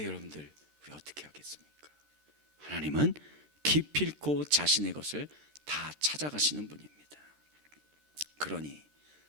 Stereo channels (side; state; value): left; late; 13 ms